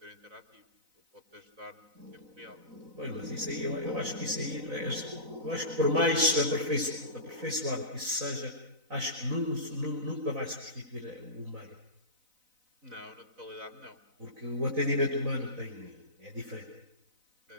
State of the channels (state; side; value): late; left; 4.0 ms